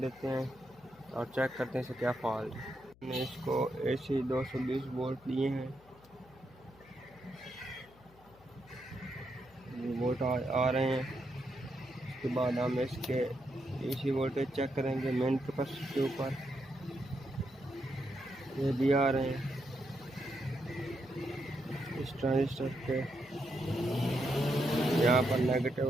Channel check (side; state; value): left; noise; hum, 26 dB below the sound